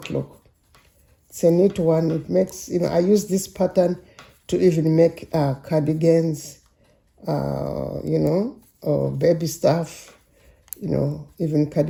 It's a knit 1. It makes, I use this pattern to even make cardigans, baby stuff, even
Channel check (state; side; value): identical; both; correlation 1.00